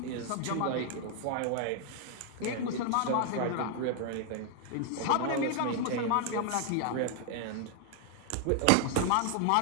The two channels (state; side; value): different; both; correlation 0.00